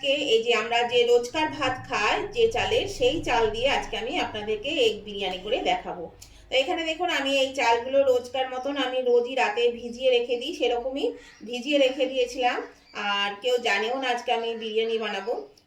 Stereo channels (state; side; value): identical; both; correlation 1.00